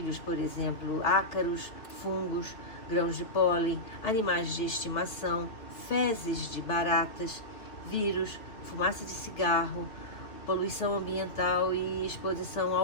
por exemplo, ácaros, fungos, grãos de pólen, animais de estimação, fezes de baratas, vírus, fumaça de cigarro, poluição ambiental e exposição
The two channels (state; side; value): late; right; 2.9 ms